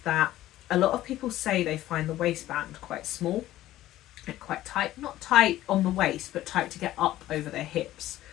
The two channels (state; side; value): quieter; right; 14.6 dB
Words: a lot of people say they find the waistband quite small and quite tight. Not tight on the waist, but tight to get up over their hips.